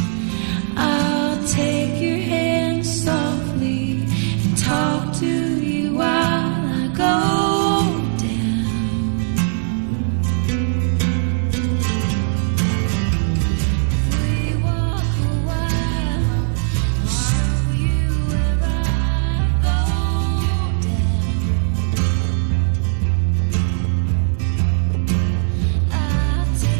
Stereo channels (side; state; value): left; silent; 66 dB below the other